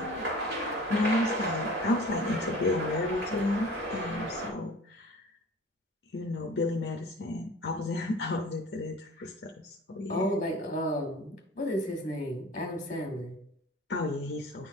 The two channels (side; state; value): both; normal; correlation 0.43